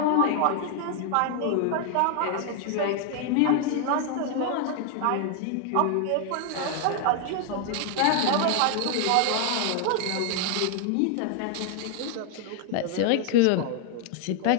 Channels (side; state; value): both; different; correlation 0.00